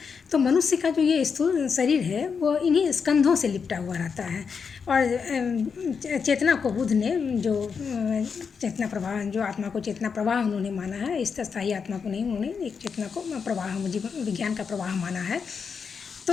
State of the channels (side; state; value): right; quieter; 6.0 dB